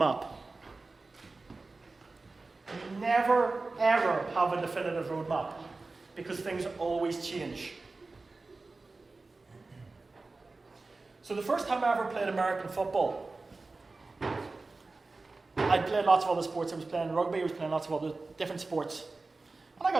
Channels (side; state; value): left; quieter; 3.6 dB